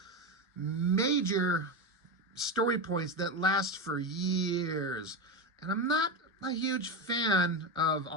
major story points that last for years, and I'm not a huge fan of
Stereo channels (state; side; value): normal; both; correlation 0.16